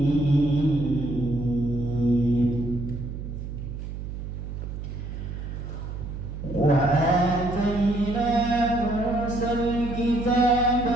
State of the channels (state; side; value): noise; right; hum, 7 dB below the sound